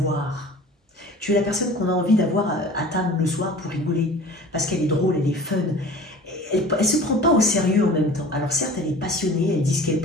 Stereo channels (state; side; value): normal; both; correlation 0.42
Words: Tu es la personne qu'on a envie d'avoir à table le soir pour rigoler, parce qu'elle est drôle, elle est fun. Elle ne se prend pas au sérieux en même temps. Alors certes, elle est passionnée, elle dit ce qu'elle